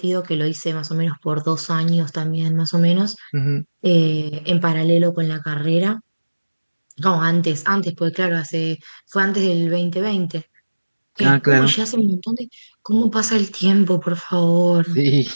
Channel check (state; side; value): inverted; both; correlation -1.00